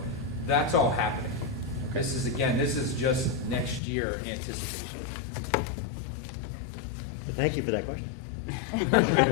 that's all happening. This is just next year anticipation. Thank you for that question.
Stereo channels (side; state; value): right; drops out; at 3.8 s